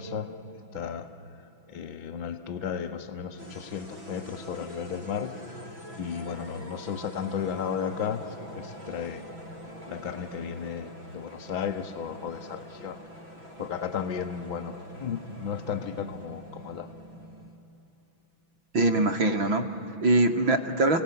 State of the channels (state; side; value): late; left; 6.0 ms